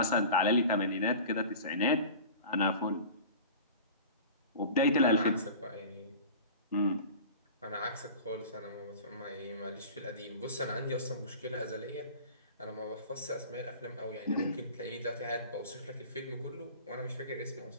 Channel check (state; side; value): inverted; both; correlation -0.38